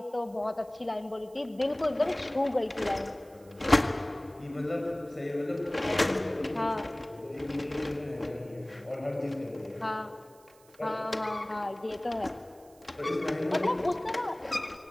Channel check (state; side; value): noise; right; hiss, 28 dB below the sound